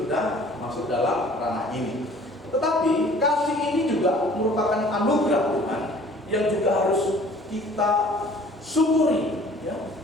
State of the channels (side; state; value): both; normal; correlation 0.51